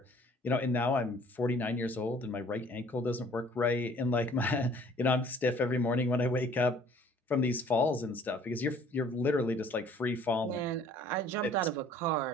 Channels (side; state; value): both; normal; correlation 0.54